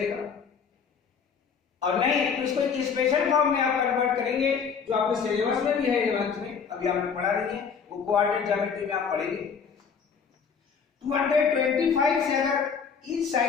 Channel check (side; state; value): right; quieter; 6.3 dB